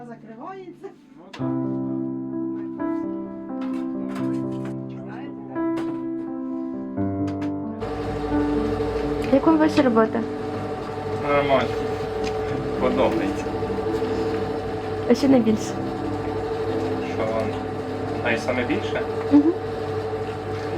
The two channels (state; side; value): identical; both; correlation 1.00